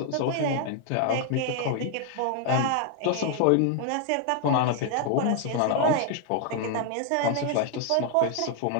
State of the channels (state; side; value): different; both; correlation 0.00